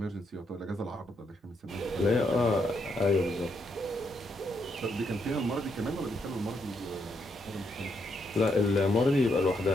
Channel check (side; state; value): both; normal; correlation 0.78